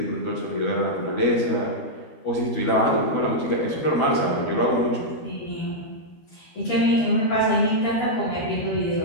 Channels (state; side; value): late; right; 13 ms